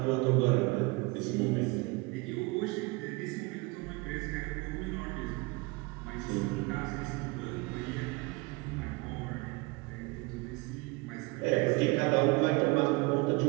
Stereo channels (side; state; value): left; quieter; 25.4 dB